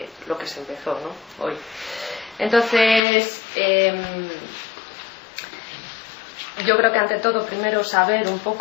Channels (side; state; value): right; drops out; at 3.0 s